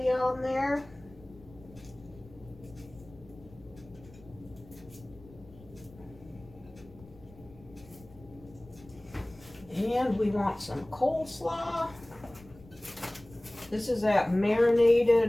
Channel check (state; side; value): noise; left; rumble, 22 dB below the sound